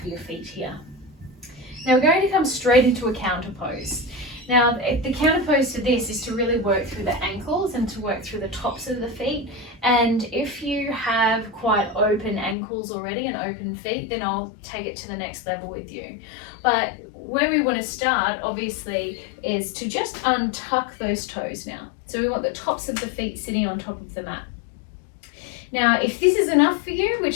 your feet here. Now we're going to come straight into a counter pose. Now the counter pose to this is to really work through the ankles and to work through the tops of the feet. And if you have quite open ankles already and open feet, then I'll take it to the next level with you. But where we want to start, obviously, is to just untuck those toes now. So we want the tops of the feet sitting on top of the mat. Now, if this is enough for you,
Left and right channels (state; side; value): drops out; right; at 12.6 s